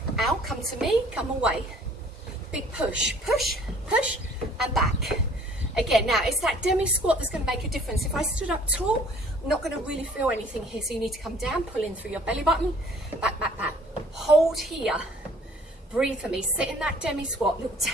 out, come to me, come away. Big push, push, push, and back. Again, now it's that demi squat that's going to make a difference. If I stood up tall, I'm not going to really feel anything here. So you need to come down, pull in through your belly button, back, back, back. Hold here. Breathe for me. Sit in that demi squat. Little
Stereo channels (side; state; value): both; normal; correlation 0.54